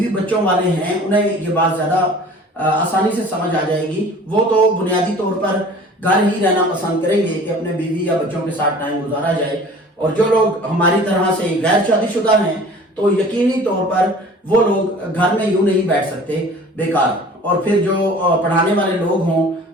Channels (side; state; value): both; normal; correlation 0.46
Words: بچوں والے ہیں انہیں یہ بات زیادہ آسانی سے سمجھ آ جائے گی. وہ تو بنیادی طور پر گھر ہی رہنا پسند کریں گے کہ اپنے بیوی یا بچوں کے ساتھ ٹائم گزارا جائے. اور جو لوگ ہماری طرح سے غیر شادی شدہ ہیں تو یقینی طور پر وہ لوگ گھر میں یوں نہیں بیٹھ سکتے بیکار. اور پھر جو پڑھانے والے لوگ ہوں